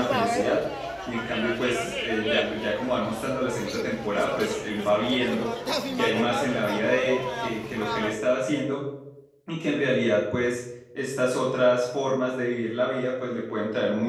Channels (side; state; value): both; identical; correlation 1.00